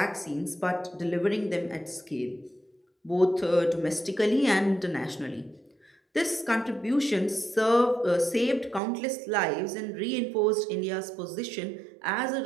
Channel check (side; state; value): left; drops out; at 8.8 s